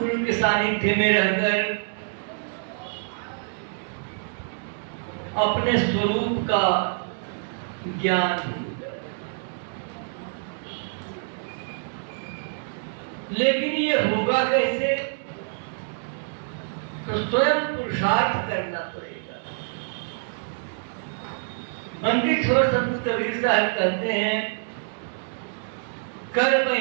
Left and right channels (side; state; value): left; silent; digital silence